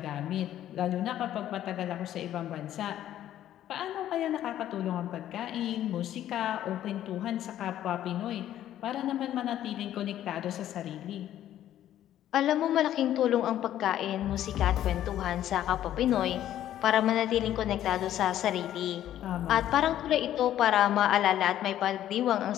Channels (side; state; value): right; quieter; 12.0 dB